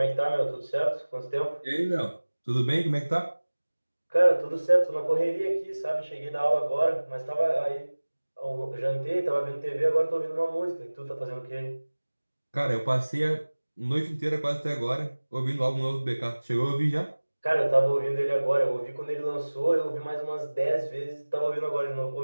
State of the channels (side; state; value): both; inverted; correlation -1.00